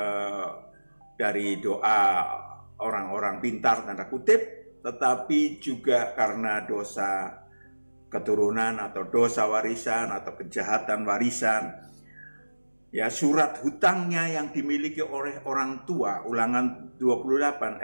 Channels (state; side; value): inverted; both; correlation -1.00